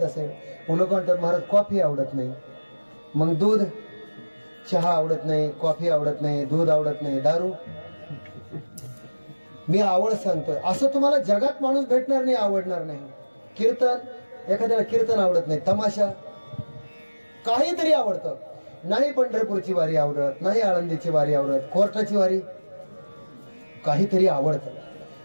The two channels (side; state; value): both; inverted; correlation -1.00